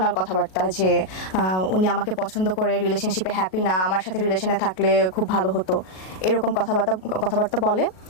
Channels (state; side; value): late; right; 38 ms